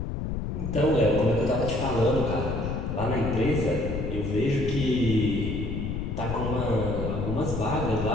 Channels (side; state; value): left; noise; rumble, 3 dB below the sound